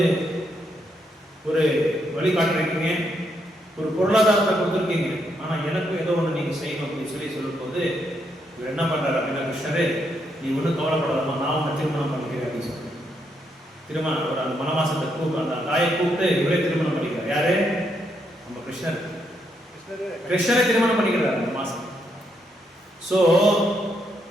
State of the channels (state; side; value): normal; both; correlation 0.78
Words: ஒரு வழி காட்டுறீங்க, ஒரு பொருளாதாரத்தை கொடுத்துருக்கீங்க, ஆனா எனக்கும் ஏதோ ஒன்று நீங்க செய்யணும் அப்படின்னு சொல்லி சொல்லும் போது இவர் என்ன பண்றாரு அப்படின்னா, கிருஷ்ணரே நீ ஒன்றும் கவலைப்படாதமா, நான் உன்னை திருமணம் பண்ணிக்கிறேன் அப்படின்னு சொல்லி திருமணம் ஒரு அந்த மனவாசத்தை அந்த தாயை கூப்பிட்டு இவரே திருமணம் பண்ணிக்கிறார். யாரு, நம்ம கிருஷ்ணரை திருமணம் பண்ணிக்கிறார் அந்த மாசம். ஸோ